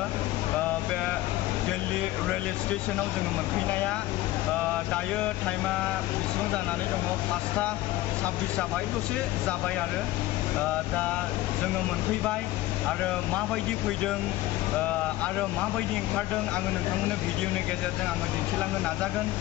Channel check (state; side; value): quieter; right; 16.6 dB